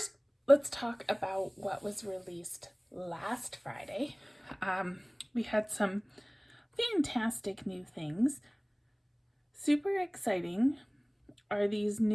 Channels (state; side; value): identical; both; correlation 1.00